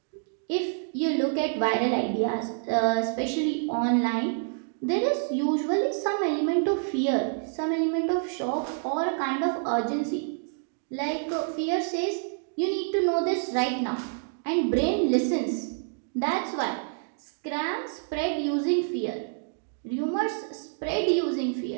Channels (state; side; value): silent; left; digital silence